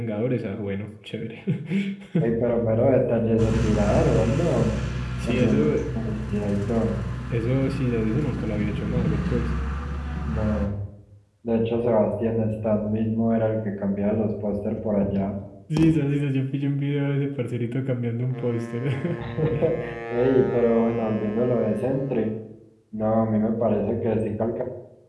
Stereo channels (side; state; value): both; identical; correlation 1.00